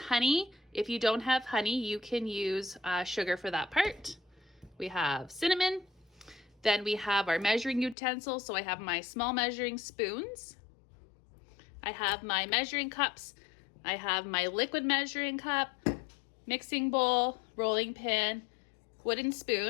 If you don't have honey, you can use sugar for that part. We have cinnamon. Then we have our measuring utensils. So I have my small measuring spoons. I have my measuring cups. I have my liquid measuring cup, mixing bowl, rolling pin, wooden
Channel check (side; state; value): right; drops out; at 8.0 s